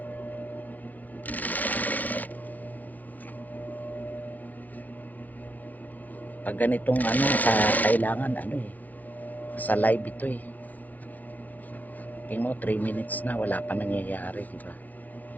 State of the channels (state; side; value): late; right; 0.082 ms